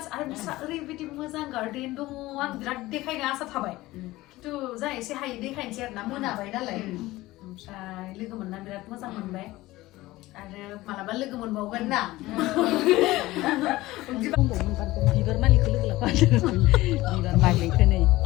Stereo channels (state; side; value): quieter; right; 18.2 dB